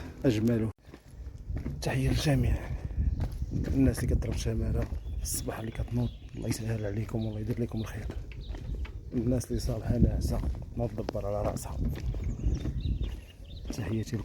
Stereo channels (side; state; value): both; identical; correlation 1.00